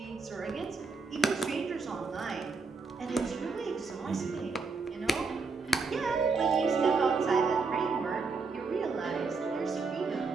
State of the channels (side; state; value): left; quieter; 4.3 dB